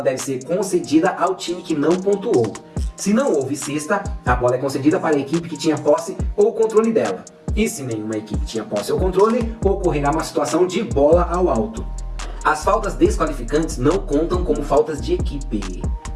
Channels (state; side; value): identical; both; correlation 1.00